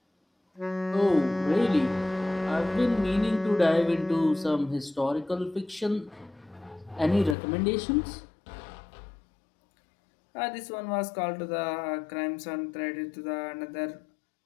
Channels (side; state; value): right; drops out; at 7.4 s